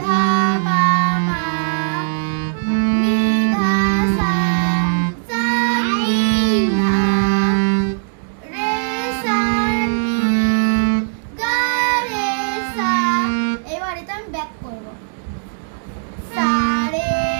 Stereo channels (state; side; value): silent; left; digital silence